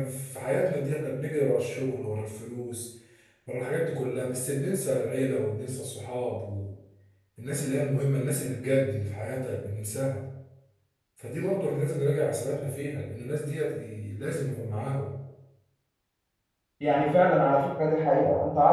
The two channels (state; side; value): identical; both; correlation 1.00